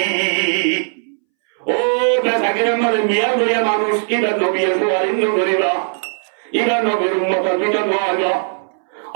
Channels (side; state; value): left; silent; 65 dB below the other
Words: ও বেচাকের আমাদের মিয়া লইয়া মানুষ ইবা নবী সুয়ারিন করিবা ইবা নবীর উম্মতের ভিতর নয়